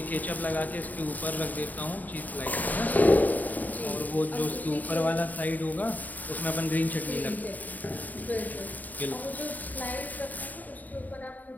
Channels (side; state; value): right; late; 0.081 ms